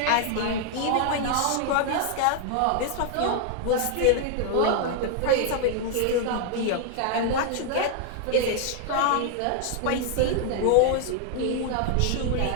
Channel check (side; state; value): both; different; correlation 0.00